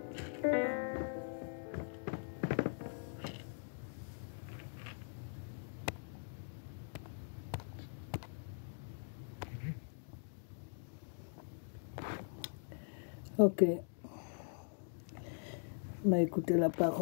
Ok. On a écouté la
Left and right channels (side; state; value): right; silent; digital silence